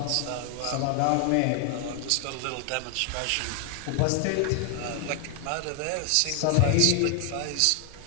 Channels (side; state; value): both; different; correlation 0.00